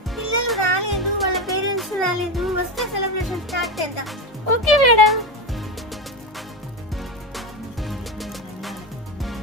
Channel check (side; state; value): both; normal; correlation 0.16